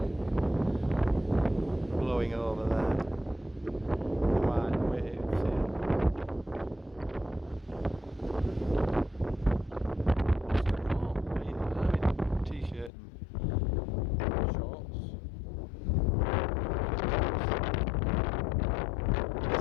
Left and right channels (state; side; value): drops out; right; at 12.9 s